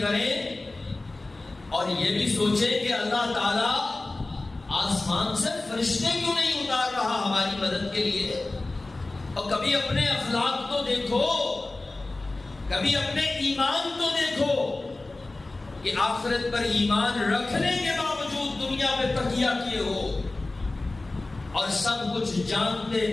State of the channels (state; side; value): quieter; right; 3.1 dB